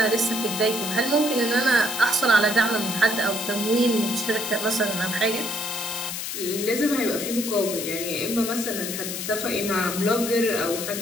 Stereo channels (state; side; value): noise; left; hiss, 5 dB below the sound